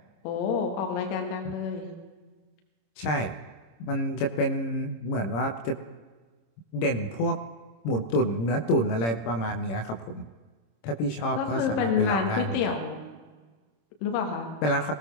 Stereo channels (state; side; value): late; right; 26 ms